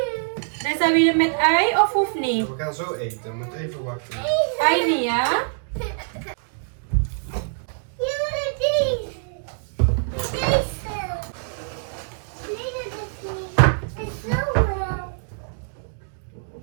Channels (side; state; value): left; silent; digital silence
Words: Reza, wil je met ei of hoeft niet? We gaan zo eten. We moeten even wachten. Ei niet, ja?